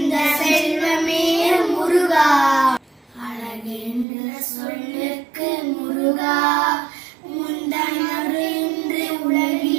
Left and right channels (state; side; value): drops out; left; at 4.0 s